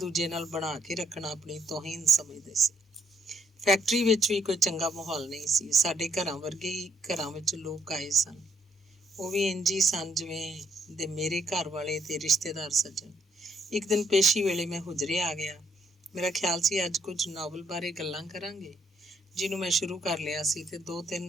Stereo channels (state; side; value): normal; both; correlation 0.72